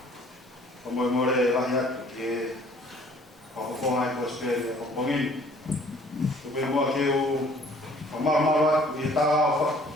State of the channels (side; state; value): both; normal; correlation 0.56